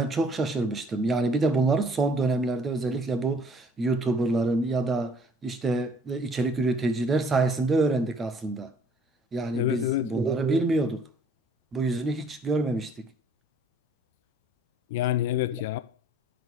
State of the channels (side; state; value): both; normal; correlation 0.58